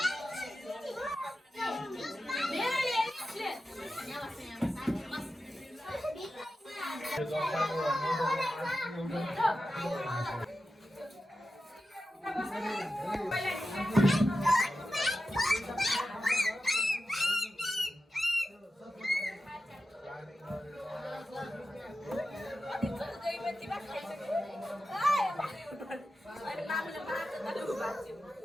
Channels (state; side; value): normal; both; correlation 0.91